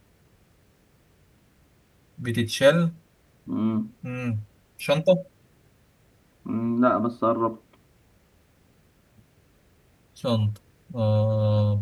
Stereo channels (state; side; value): identical; both; correlation 1.00